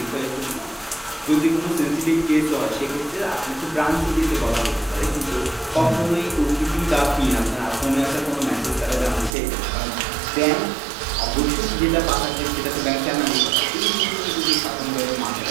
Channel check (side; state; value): left; drops out; at 9.3 s